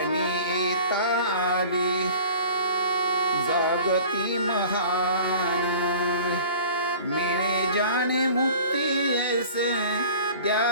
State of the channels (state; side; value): inverted; both; correlation -0.44